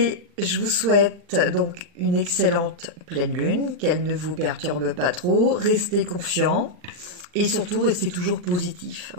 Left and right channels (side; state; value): left; late; 40 ms